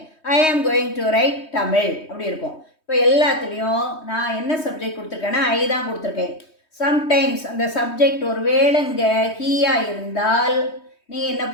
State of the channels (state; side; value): late; right; 3.2 ms